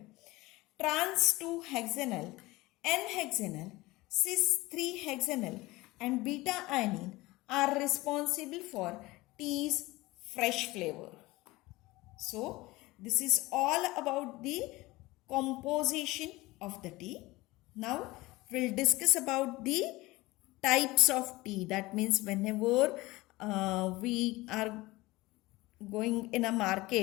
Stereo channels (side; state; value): right; quieter; 20.3 dB